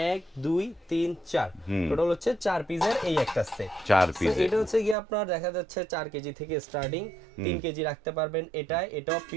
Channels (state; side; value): drops out; left; at 5.0 s